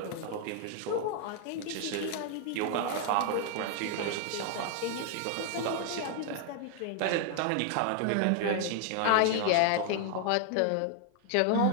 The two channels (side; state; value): both; different; correlation 0.00